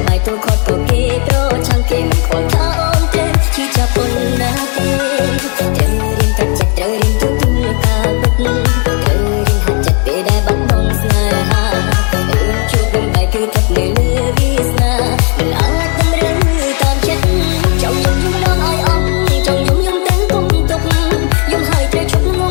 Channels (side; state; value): right; quieter; 37.6 dB